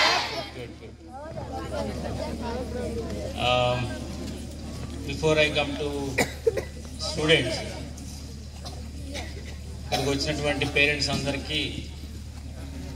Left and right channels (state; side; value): identical; both; correlation 1.00